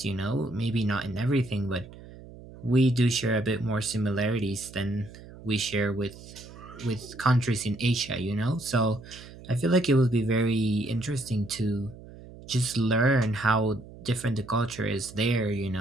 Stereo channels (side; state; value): right; noise; hum, 17 dB below the sound